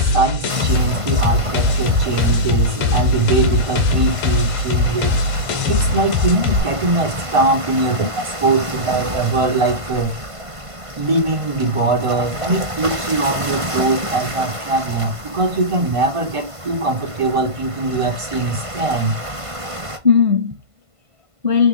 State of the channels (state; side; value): late; left; 1.5 ms